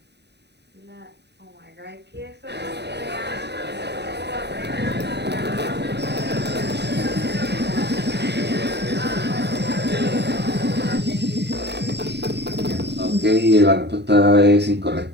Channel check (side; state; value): left; late; 0.49 ms